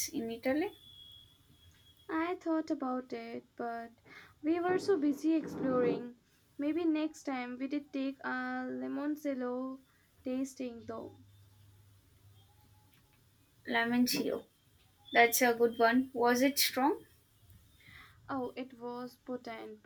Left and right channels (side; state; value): both; identical; correlation 1.00